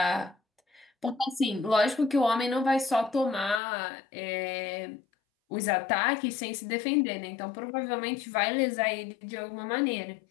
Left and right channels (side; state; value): right; drops out; at 3.6 s